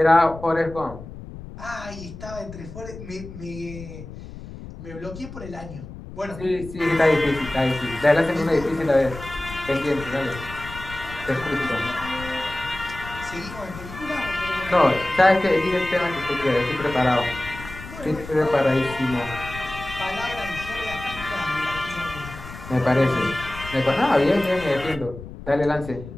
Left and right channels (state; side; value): noise; left; rumble, 13 dB below the sound